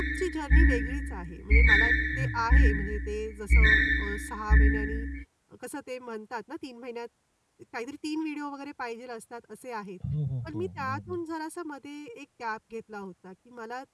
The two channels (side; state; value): both; identical; correlation 1.00